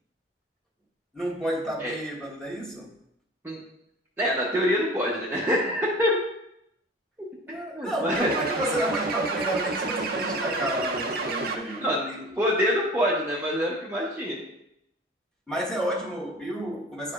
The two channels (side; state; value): both; normal; correlation 0.41